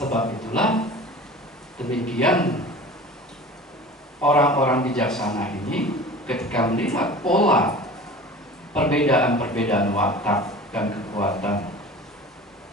itulah demikian orang-orang bijaksana ini ketika melihat pola perbedaan-perbedaan watak dan kekuatan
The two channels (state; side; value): normal; both; correlation 0.39